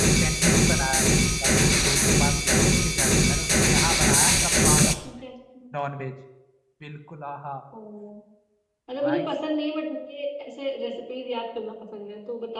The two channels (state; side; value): identical; both; correlation 1.00